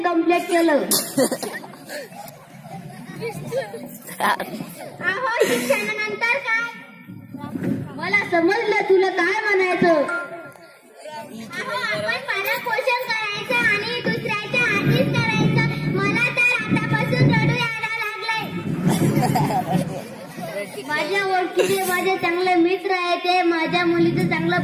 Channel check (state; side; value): identical; both; correlation 1.00